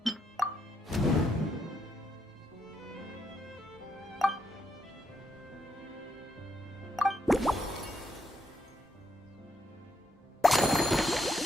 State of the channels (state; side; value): normal; both; correlation 0.79